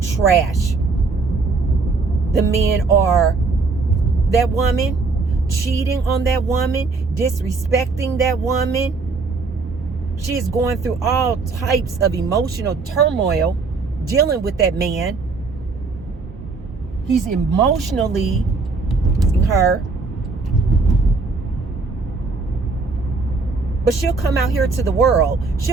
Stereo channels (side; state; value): left; quieter; 4.1 dB